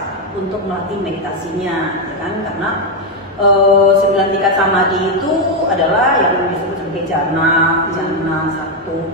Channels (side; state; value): both; normal; correlation 0.04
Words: untuk melatih meditasinya, ya kan? Karena 9 tingkat samadhi itu adalah yang disebut sebagai jana 1,